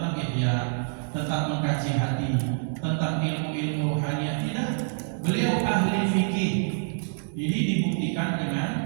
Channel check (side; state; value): left; silent; digital silence